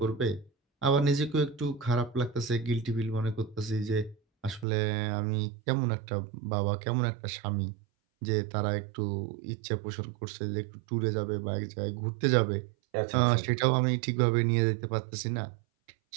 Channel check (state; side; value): drops out; left; at 4.7 s